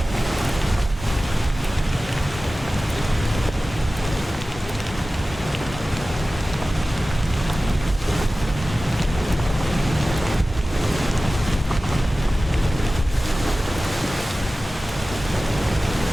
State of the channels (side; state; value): both; normal; correlation 0.96